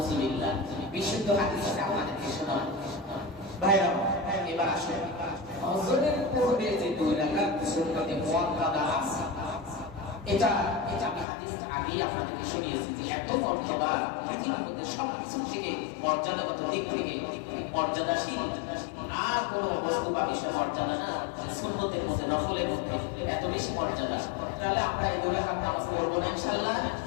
বিশুদ্ধ হাদিসটা আপনাদেরকে শোনাবো ভাইরা। এবার আসেন ফজরের পূর্বে যে 2 রাকাত সুন্নতে মুআক্কাদা আছে, এটা আমি হাদিসটা আগেই আপনাদেরকে শুনিয়েছি যে এত মর্যাদা, পৃথিবীর মধ্যে সবকিছু থেকে মর্যাদাগত দিক থেকে মর্যাদাশীল আর কোনো বস্তু বা বিষয় মর্যাদা না, সুন্নতের মধ্যে নফলের মধ্যে এত বেশি মর্যাদা। তাহলে আমরা এই 2 রাকাত নামাজ পড়বো না ইনশাআল্লাহ।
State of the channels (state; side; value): drops out; right; at 11.2 s